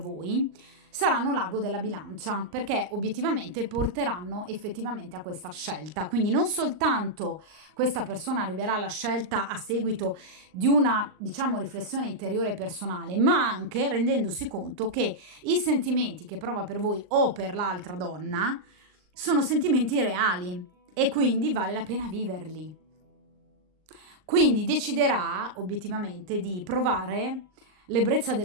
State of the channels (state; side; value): late; left; 39 ms